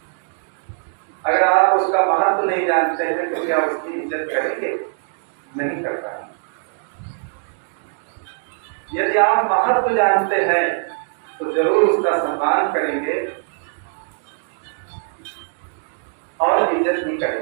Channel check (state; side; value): silent; left; digital silence